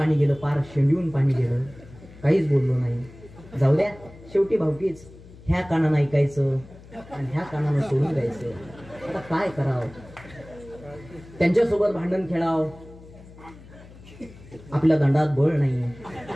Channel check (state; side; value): noise; left; hum, 20 dB below the sound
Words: गेलं, पार शेंडून पाणी गेलं. काहीच बोललो नाही. जाऊ द्या, शेवटी भावकीच. ह्या कानानं ऐकायचं आणि ह्या कानानं सोडून द्यायचं. आता काय करावं, त्यांच्यासोबत भांडण खेळावं. आपल्या दंडात बळ नाही,